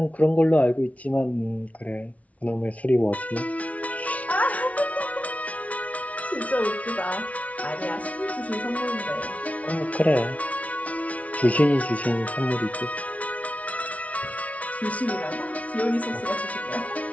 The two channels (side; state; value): right; late; 0.067 ms